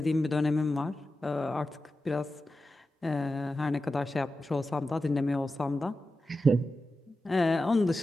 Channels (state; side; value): normal; both; correlation 0.92